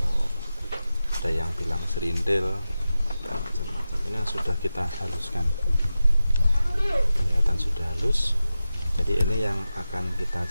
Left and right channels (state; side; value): inverted; both; correlation -0.92